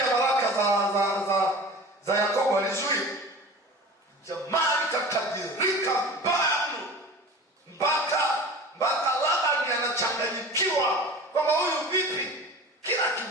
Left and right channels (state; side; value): normal; both; correlation 0.37